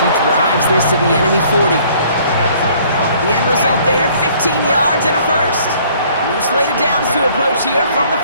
he drives this to the enemy 40. The end result there, 15 yards and a first. New slated downs to approach here from the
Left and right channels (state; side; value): inverted; both; correlation -0.58